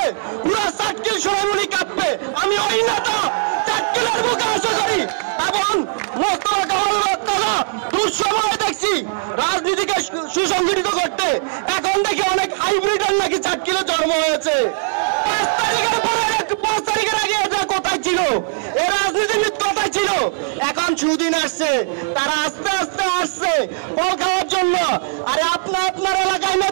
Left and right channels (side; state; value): left; silent; digital silence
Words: পুরো চাটকিল সোনামণি কাঁপবে। আমি ওই নেতা চাটকিলের বুকে আশা করি এবং দুঃসময় দেখছি রাজনীতিকে সুসংগঠিত করতে। এখন দেখি অনেক হাইব্রিডের নাকি চাটকিলে জন্ম হয়েছে। 5 তারিখের আগে এটা কোথায় ছিল? এ রাজনীতিবিদ কোথায় ছিল? এখন সুদিন আসছে, তারা আস্তে আস্তে আসছে ফল খাওয়ার জন্য। আরে আপনার এলাকায়